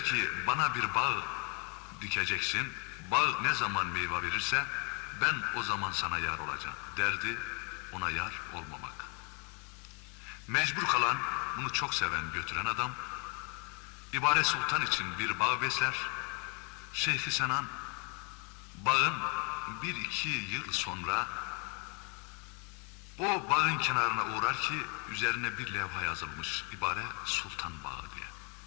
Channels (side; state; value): right; quieter; 34.9 dB